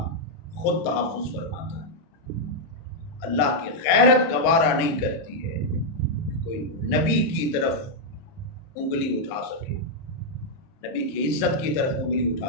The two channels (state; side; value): late; right; 30 ms